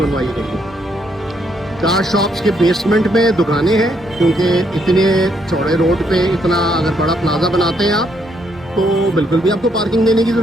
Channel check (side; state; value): both; normal; correlation 0.73